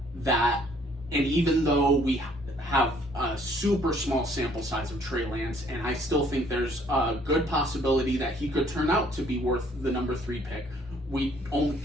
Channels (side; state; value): both; normal; correlation 0.62